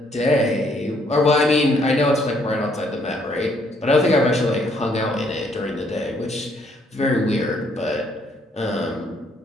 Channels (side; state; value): both; normal; correlation 0.68